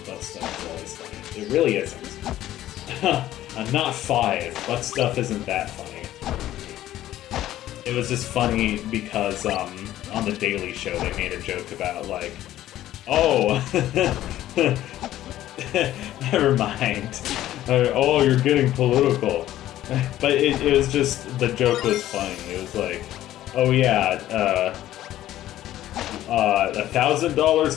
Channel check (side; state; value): right; quieter; 13.6 dB